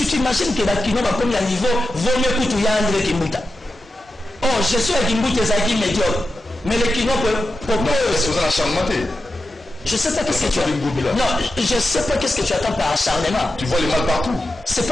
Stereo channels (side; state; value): both; normal; correlation 0.90